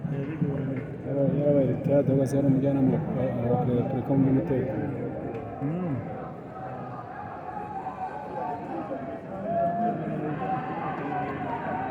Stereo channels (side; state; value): both; identical; correlation 1.00